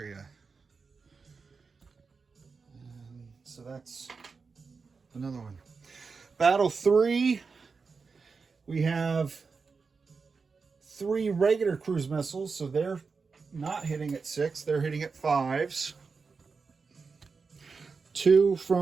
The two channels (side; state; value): left; quieter; 4.9 dB